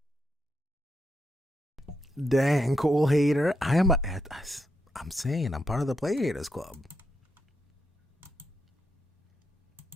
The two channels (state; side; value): normal; both; correlation 0.82